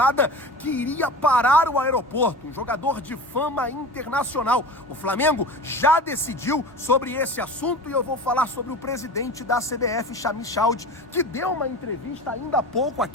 que iria parar o aeroporto, um jogador de fama internacional. O Flamengo já decidiu sobre esse assunto e eu vou falar sobre o presidente da CBF, Sami Khedira, que deu uma entrevista ainda há pouco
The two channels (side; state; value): both; normal; correlation 0.34